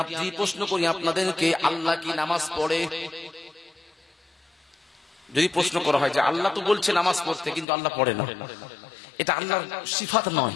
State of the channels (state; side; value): drops out; right; at 7.7 s